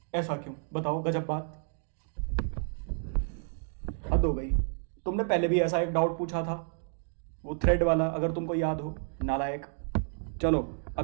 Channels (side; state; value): left; silent; 57 dB below the other